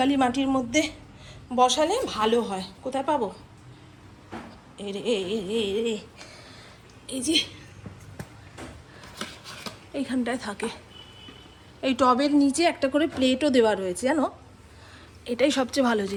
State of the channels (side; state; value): both; identical; correlation 1.00